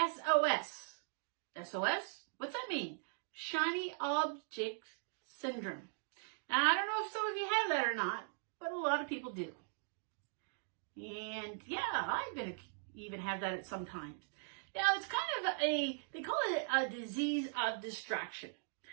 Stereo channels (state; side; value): silent; left; digital silence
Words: SOS? What's that mean? Shiny Object Syndrome. Now, I don't know if some of you have that or not, but a lot of people do. And yeah, I even have that at some times. Now, it's kind of they call it a disease of distraction.